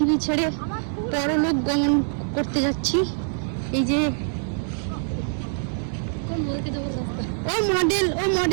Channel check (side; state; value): left; silent; digital silence